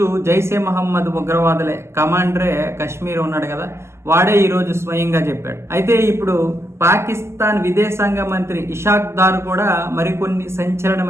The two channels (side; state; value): left; late; 0.13 ms